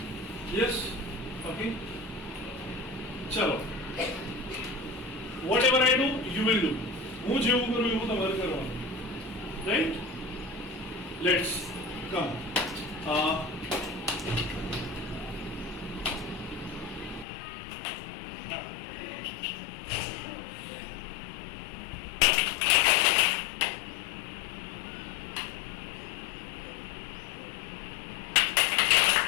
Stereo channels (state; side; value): drops out; right; at 17.2 s